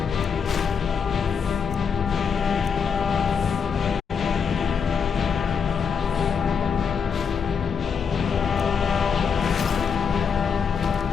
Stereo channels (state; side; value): quieter; right; 6.5 dB